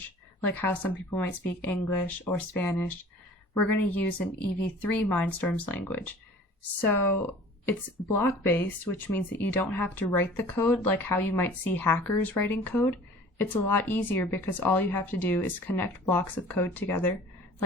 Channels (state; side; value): normal; both; correlation 0.46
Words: like how some people might speak English or Spanish. We're going to use an EV3 Mindstorms language. So it's block-based, which means that you don't have to write the code like how you might see hackers writing code. It's a lot easier because all you have to do is connect blocks of code together,